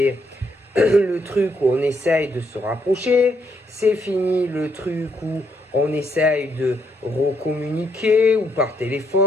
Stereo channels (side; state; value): both; normal; correlation 0.74